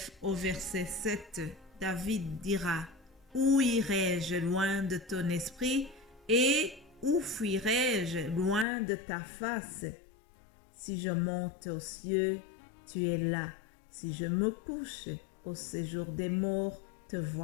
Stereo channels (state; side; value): drops out; right; at 8.7 s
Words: au verset 7. David dira: où irai-je loin de ton esprit et où fuirai-je loin de ta face? Si je monte aux cieux, tu es là. Si je me couche au séjour des morts, te